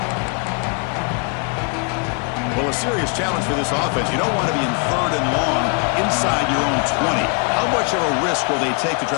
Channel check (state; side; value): quieter; right; 35.4 dB